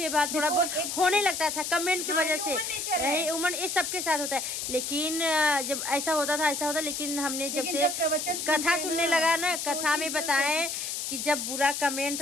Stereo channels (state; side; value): noise; left; hiss, 4 dB below the sound